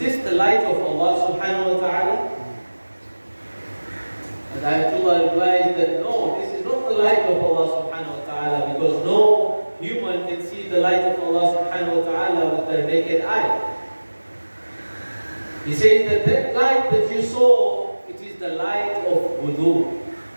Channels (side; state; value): both; inverted; correlation -1.00